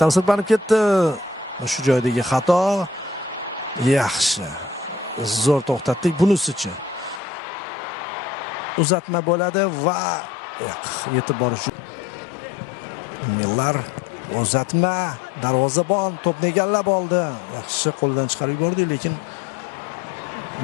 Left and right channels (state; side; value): drops out; right; at 7.2 s